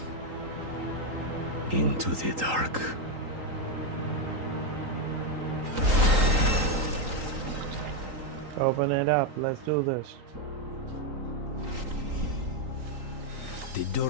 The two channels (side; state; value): left; late; 3.8 ms